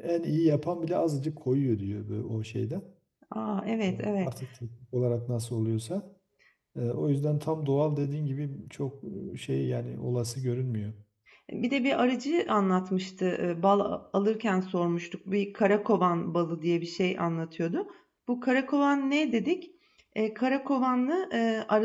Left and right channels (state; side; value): identical; both; correlation 1.00